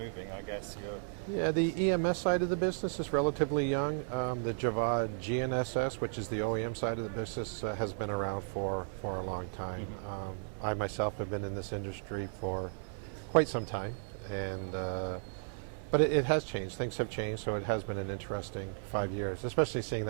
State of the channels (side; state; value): left; silent; digital silence